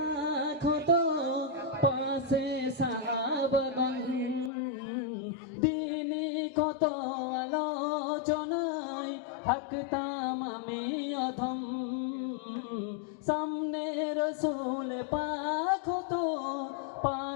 হতো পাশে সাহাবাগণ দিনে কত আলোচনায় থাকতাম আমি অধম সামনে রসুল পাক হতো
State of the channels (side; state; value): right; drops out; at 4.5 s